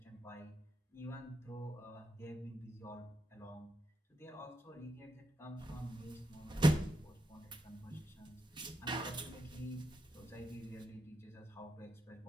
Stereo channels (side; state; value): both; normal; correlation 0.84